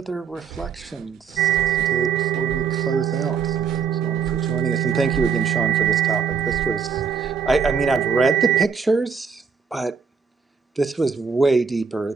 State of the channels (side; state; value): left; quieter; 6.1 dB